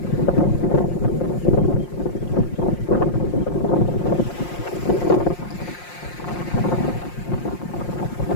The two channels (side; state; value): right; late; 5.6 ms